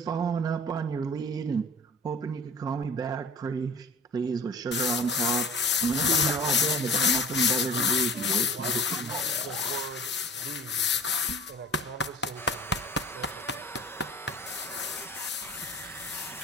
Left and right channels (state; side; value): normal; both; correlation 0.42